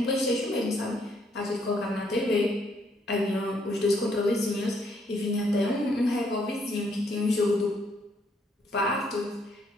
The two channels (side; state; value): both; normal; correlation 0.70